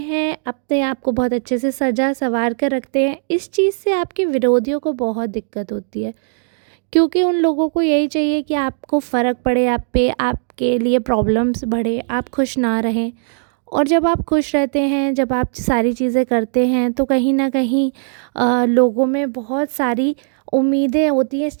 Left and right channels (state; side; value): silent; left; digital silence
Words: अपने आप को बहुत अच्छे से सजा संवार कर रखते हैं। इस चीज़ से आपके विरोधियों को बहुत दिक्कत होती है, क्योंकि उन लोगों को यही चाहिए कि आपको फ़र्क पड़े आप पे, आपके लिए प्रॉब्लम्स बढ़े, आप खुश ना रहें। और जब आप खुश रहते हैं, जब आप सारी चीज़ें करते हैं, तो कहीं ना कहीं लोगों में बहुत सारी उम्मीदें होती हैं इस